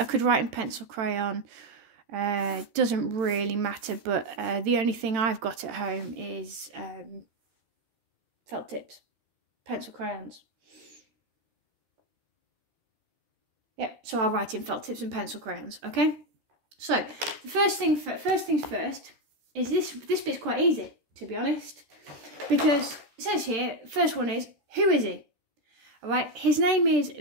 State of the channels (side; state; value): left; late; 13 ms